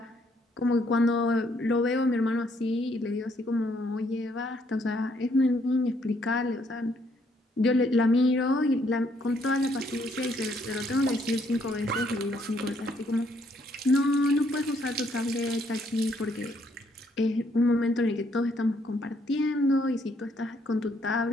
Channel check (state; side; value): normal; both; correlation 0.70